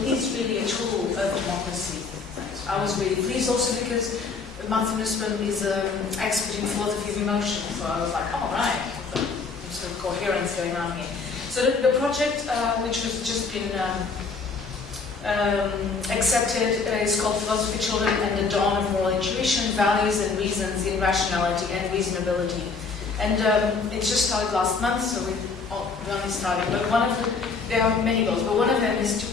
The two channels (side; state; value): right; quieter; 4.7 dB